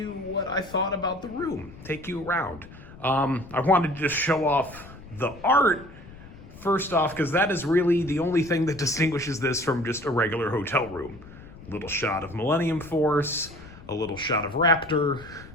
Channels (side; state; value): left; noise; rumble, 18 dB below the sound